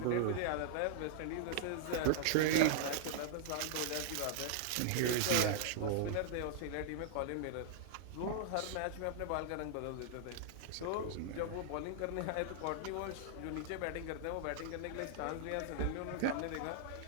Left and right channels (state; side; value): different; both; correlation -0.01